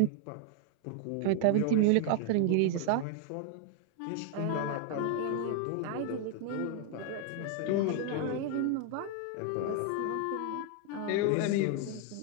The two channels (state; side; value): different; both; correlation 0.00